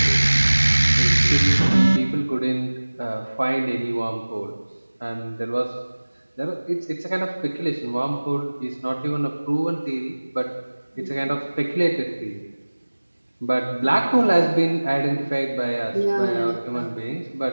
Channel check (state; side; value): inverted; both; correlation -1.00